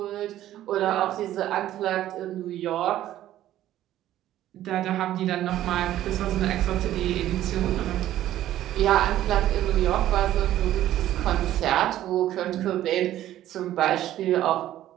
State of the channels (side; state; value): left; quieter; 13.1 dB